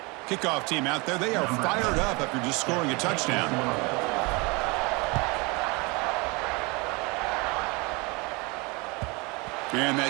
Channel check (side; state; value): left; quieter; 27.4 dB